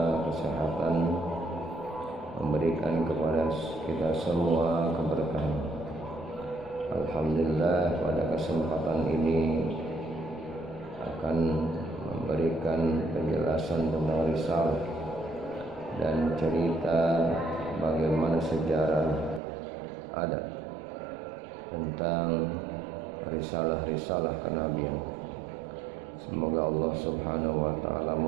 kesehatan, memberikan kepada kita semua keberkahan. Alhamdulillah, pada kesempatan ini akan memberikan penjelasan tentang risalah dan cerita bagaimana sejarah ada tentang risalah-risalah kenabian. Semoga Allah Subhanahu wa taala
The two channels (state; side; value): drops out; left; at 19.4 s